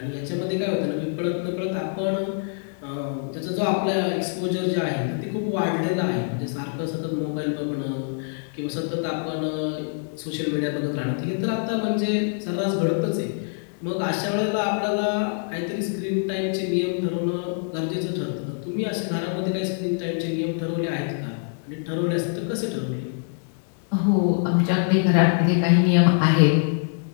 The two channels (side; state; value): right; silent; digital silence